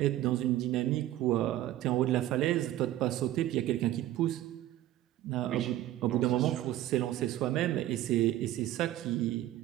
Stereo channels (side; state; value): left; quieter; 14.1 dB